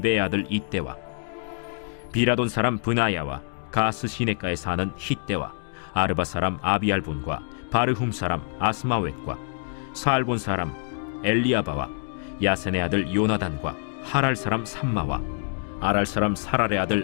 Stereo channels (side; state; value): right; silent; 61 dB below the other